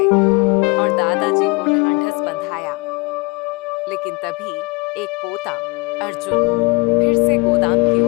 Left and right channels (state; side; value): quieter; right; 28.3 dB